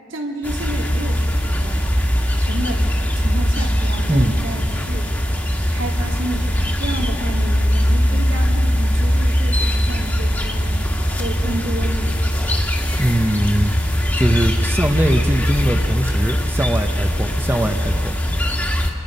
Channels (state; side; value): normal; both; correlation 0.91